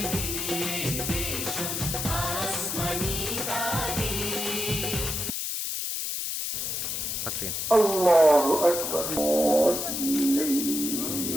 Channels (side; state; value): left; noise; hiss, 2 dB below the sound